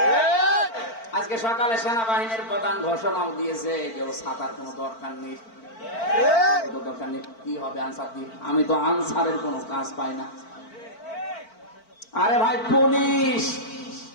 আজকে সকালে সেনাবাহিনীর প্রধান ঘোষণাও দিয়েছে যে ও ছাতার কোনো দরকার নেই। দরকার নেই, কি হবে আনসার দিয়ে? আমি তো আনসারের কোনো কাজ পাই না। আরে ভাই, পুলিশ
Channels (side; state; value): right; late; 4.5 ms